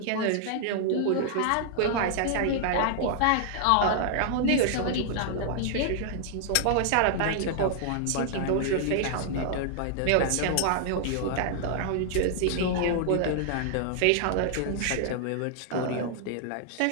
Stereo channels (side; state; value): both; different; correlation -0.01